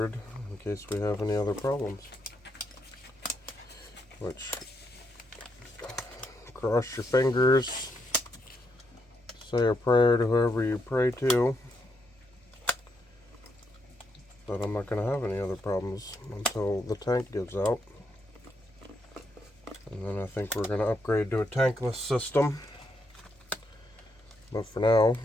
in case we have any other problems. Which, cross your fingers, say a prayer to whoever you pray to, that I'm not going to have any other problems until the tank gives out. And then I think we're going to upgrade to a tankless system. But for now,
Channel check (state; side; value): normal; both; correlation 0.78